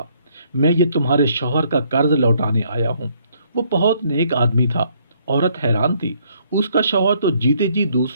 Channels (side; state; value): both; inverted; correlation -0.67